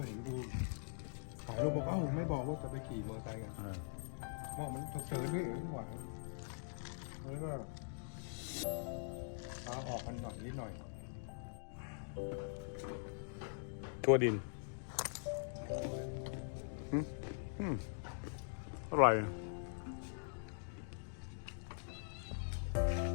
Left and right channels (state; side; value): silent; right; digital silence